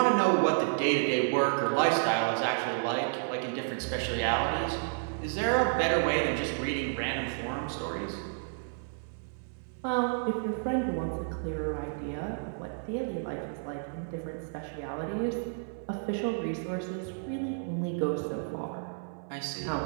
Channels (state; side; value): silent; left; 57 dB below the other